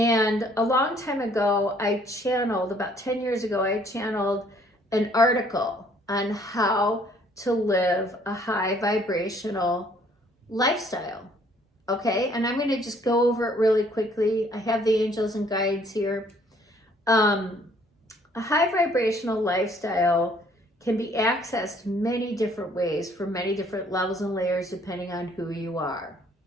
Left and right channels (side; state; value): both; normal; correlation 0.61